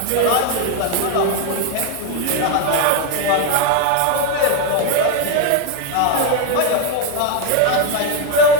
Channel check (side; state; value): both; different; correlation 0.01